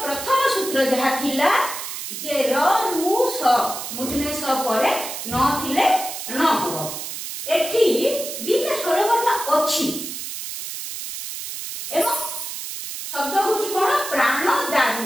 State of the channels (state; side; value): noise; right; hiss, 7 dB below the sound